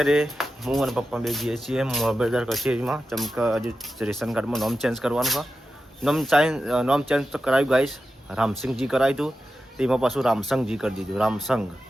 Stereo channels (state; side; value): normal; both; correlation 0.91